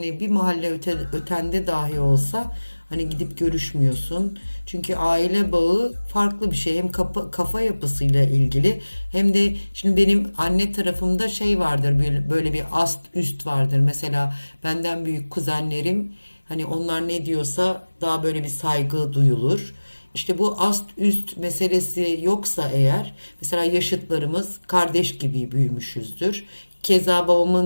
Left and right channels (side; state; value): both; inverted; correlation -1.00